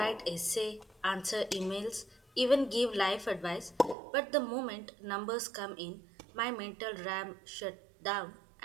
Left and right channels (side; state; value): left; drops out; at 4.0 s